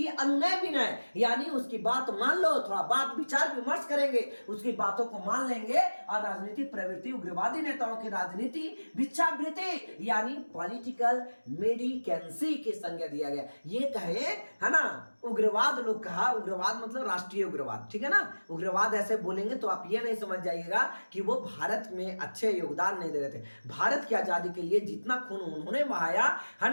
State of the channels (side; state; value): both; inverted; correlation -1.00